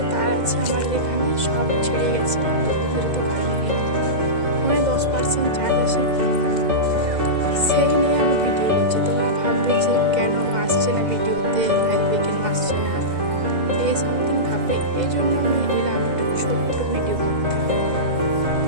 তার আছে আমাদের এখানে সব ছিঁড়ে গেছে। দুদিন ধরে তো কারেন্ট নেই। ফোনে 10% চার্জ আছে, সেই নিয়ে আমি ভিডিও করছি। তোমরা ভাববে যে কেন আসছে না ভিডিওতে, লাইভে কেন আসছে না, এই সামথিং ভাববে। এই জন্য আমি এলাম একটু ছোট্ট ভিডিও করতে।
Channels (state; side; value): late; left; 2.0 ms